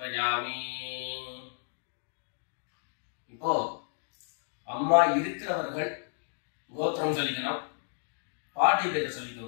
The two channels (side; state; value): right; silent; digital silence